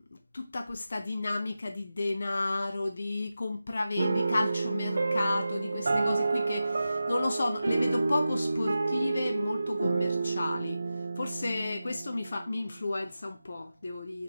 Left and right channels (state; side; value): inverted; both; correlation -0.92